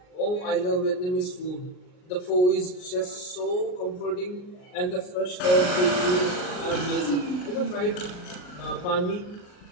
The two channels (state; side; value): late; right; 39 ms